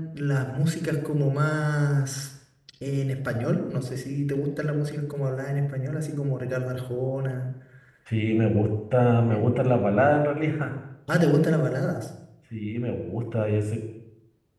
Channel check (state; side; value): identical; both; correlation 1.00